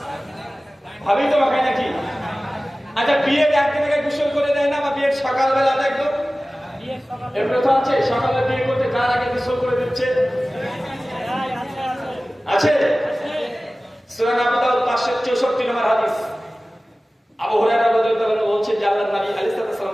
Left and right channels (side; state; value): both; normal; correlation 0.97